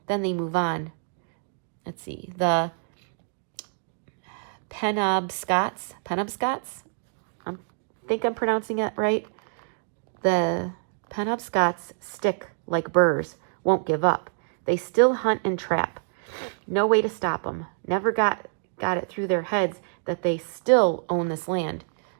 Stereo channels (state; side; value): silent; left; digital silence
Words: then they move on. Let's see, the Penobscots? I think I'm pronouncing it right. The Penobscots stick like burrs, won't give up. They still hunt and trap. No way to stop them. Never got it through their heads that they still own this land.